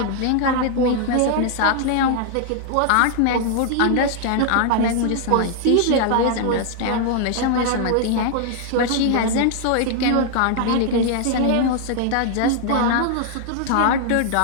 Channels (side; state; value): both; different; correlation 0.00